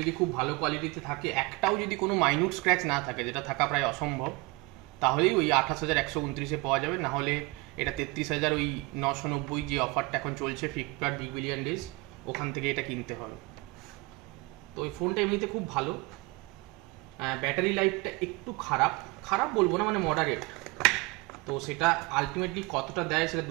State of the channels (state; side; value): quieter; left; 25.0 dB